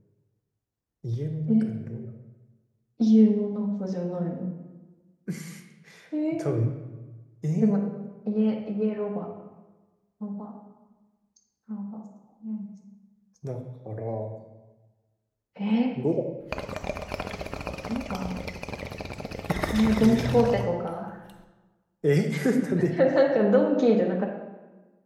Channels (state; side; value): identical; both; correlation 1.00